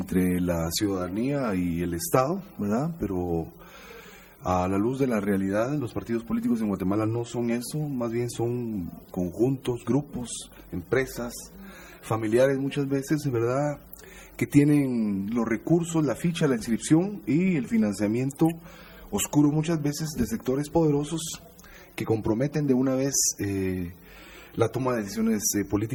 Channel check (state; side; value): identical; both; correlation 1.00